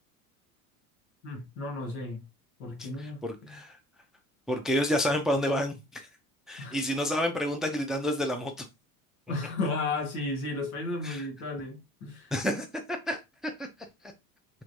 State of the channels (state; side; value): normal; both; correlation 0.54